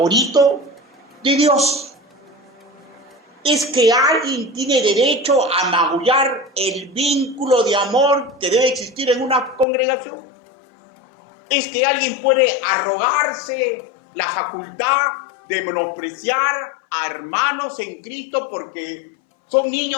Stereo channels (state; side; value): drops out; right; at 9.7 s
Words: de Dios. Es que alguien tiene derecho a magullar el vínculo de amor que debe existir en una congregación. Es que alguien puede arrogarse la facultad de menospreciar a hermanos en Cristo porque son